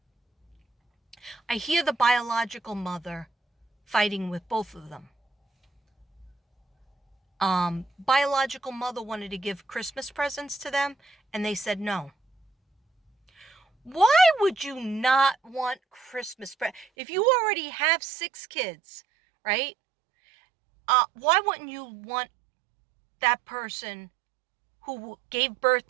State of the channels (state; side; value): drops out; left; at 16.9 s